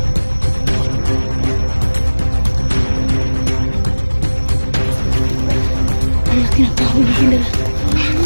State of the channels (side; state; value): both; inverted; correlation -1.00